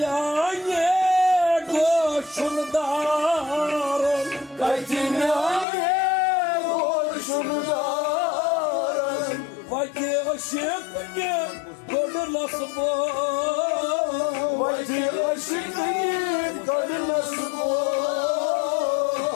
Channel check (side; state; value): right; drops out; at 5.7 s